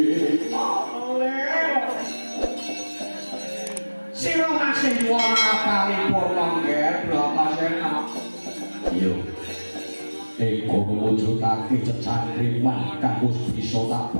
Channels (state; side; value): inverted; both; correlation -1.00